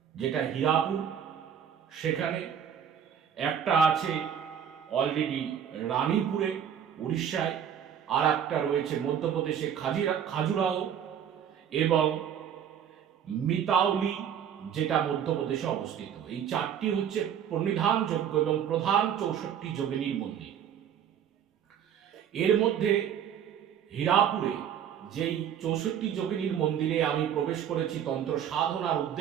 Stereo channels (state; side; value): quieter; left; 8.9 dB